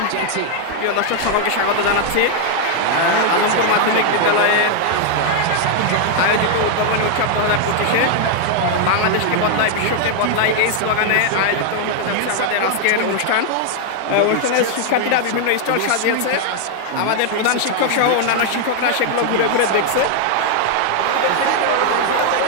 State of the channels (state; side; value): different; both; correlation 0.00